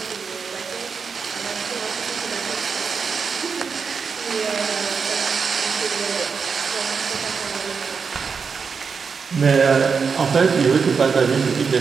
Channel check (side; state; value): left; quieter; 5.6 dB